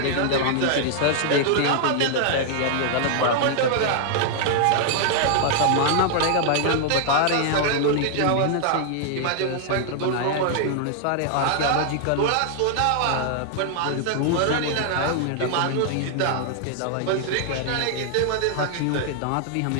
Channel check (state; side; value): different; both; correlation 0.00